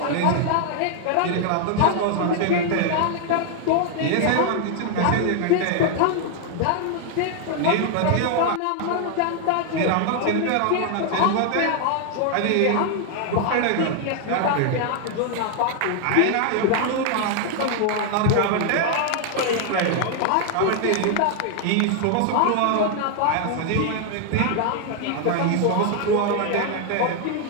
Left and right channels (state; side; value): different; both; correlation 0.00